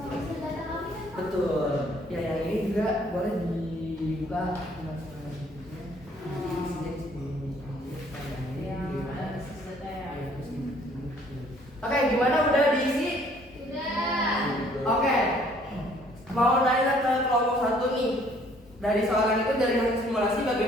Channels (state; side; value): normal; both; correlation 0.60